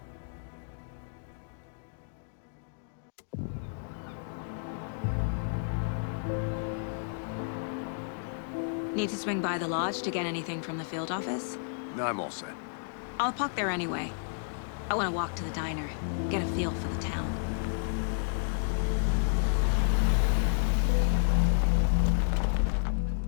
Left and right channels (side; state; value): right; silent; digital silence